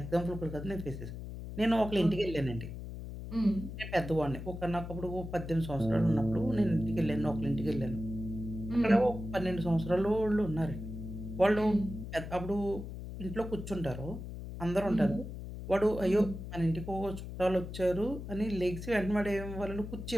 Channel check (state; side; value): noise; left; hum, 9 dB below the sound